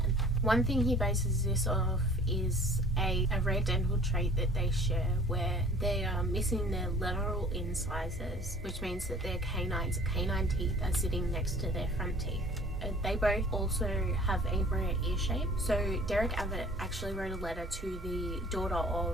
One thing he bases this off is a rare dental trait that they share, where they are missing their lateral incisors, which means that their canine teeth are sitting next to their front teeth. They both also have a rare ear shape. So Derek Abbott actually wrote a letter to the daughter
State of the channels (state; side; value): normal; both; correlation 0.50